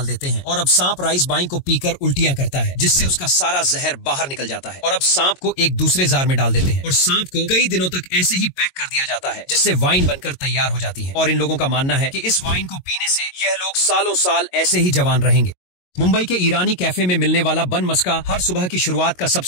देते हैं और अब सांप राइस बाइन को पीकर उल्टियां करता है जिससे उसका सारा जहर बाहर निकल जाता है। और अब सांप को एक दूसरे जार में डाल देते हैं और सांप को कई दिनों तक ऐसे ही पैक कर दिया जाता है जिससे वाइन बनकर तैयार हो जाती है। और इन लोगों का मानना है कि इस वाइन को पीने से यह लोग सालों साल ऐसे ही जवान रहेंगे। मुंबई के ईरानी कैफे में मिलने वाला बन मस्का हर सुबह की शुरुआत का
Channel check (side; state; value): right; late; 22 ms